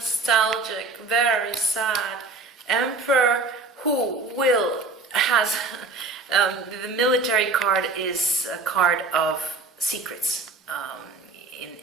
very sad. Emperor who has... the military card is a card of secrets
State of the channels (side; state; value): left; quieter; 3.7 dB